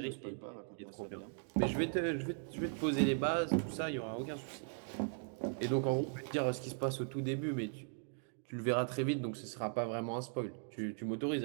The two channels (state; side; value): silent; left; 52 dB below the other